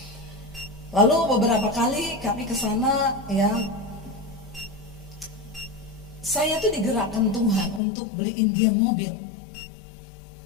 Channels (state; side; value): drops out; right; at 7.8 s